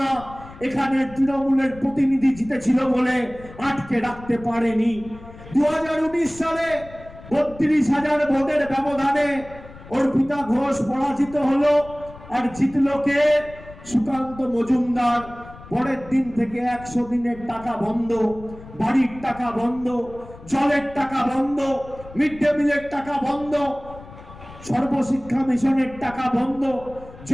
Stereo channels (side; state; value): left; noise; rumble, 18 dB below the sound